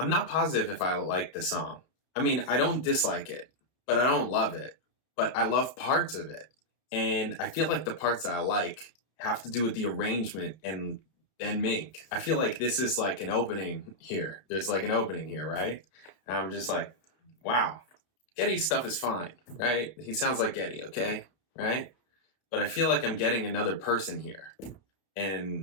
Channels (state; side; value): late; right; 32 ms